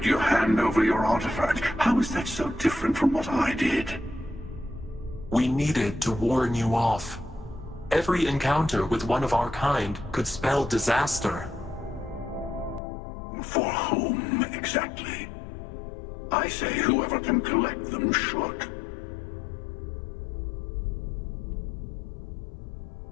you hand over your artifact. How is that so different from what I did? We needed to warn you off. Every encounter with one of our kind could spell disaster. For whom, exactly? I say whoever can collect them should.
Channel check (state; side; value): drops out; right; at 12.8 s